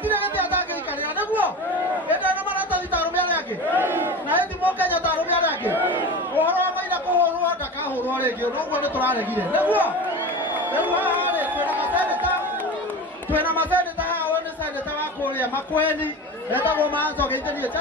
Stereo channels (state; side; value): normal; both; correlation 0.30